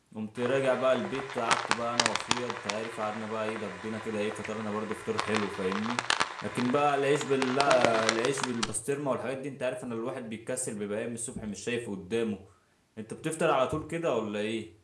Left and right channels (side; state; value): both; identical; correlation 1.00